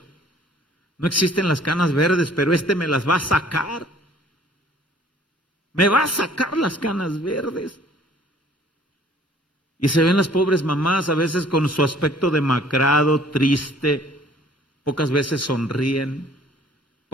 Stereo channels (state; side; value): normal; both; correlation 0.56